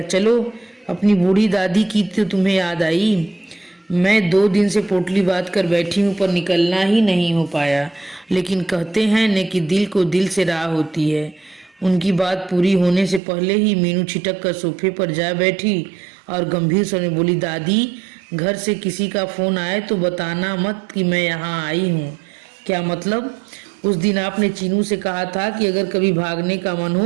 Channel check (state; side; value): drops out; left; at 13.2 s